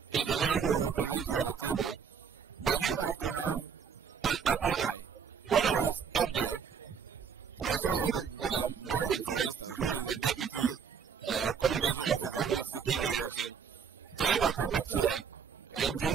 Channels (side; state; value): left; quieter; 6.7 dB